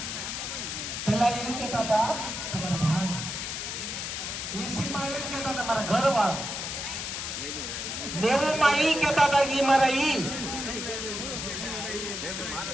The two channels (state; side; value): noise; left; hiss, 4 dB below the sound